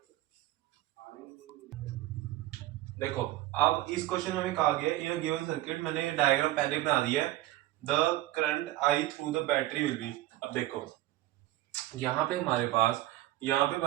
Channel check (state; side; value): quieter; left; 16.1 dB